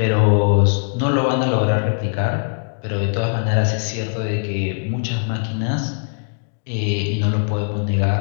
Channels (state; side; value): silent; right; digital silence